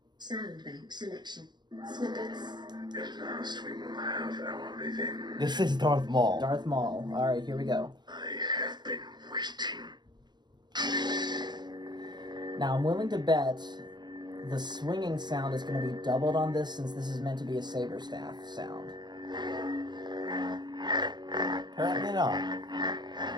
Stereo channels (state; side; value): late; left; 0.21 ms